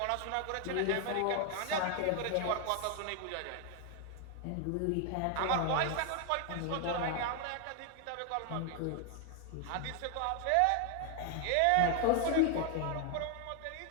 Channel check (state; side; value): different; both; correlation 0.00